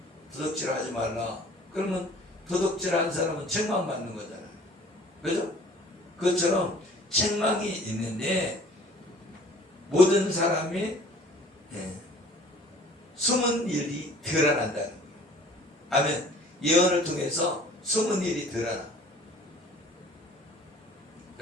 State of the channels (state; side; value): normal; both; correlation 0.50